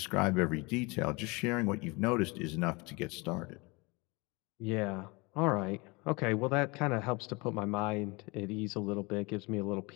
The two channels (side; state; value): right; quieter; 26.4 dB